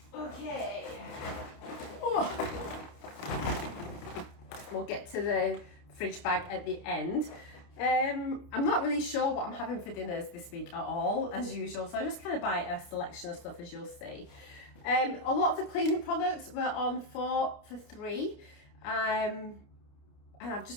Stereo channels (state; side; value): late; right; 29 ms